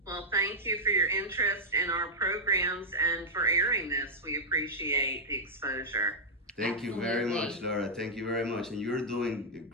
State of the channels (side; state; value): both; normal; correlation -0.06